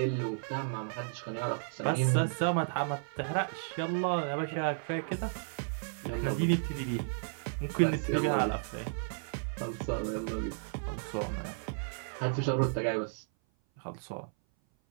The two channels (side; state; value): left; silent; 56 dB below the other